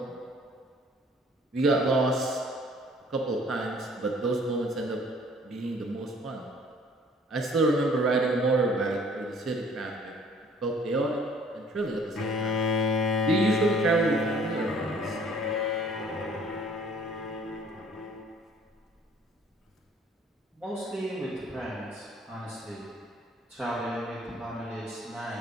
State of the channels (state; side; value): normal; both; correlation 0.56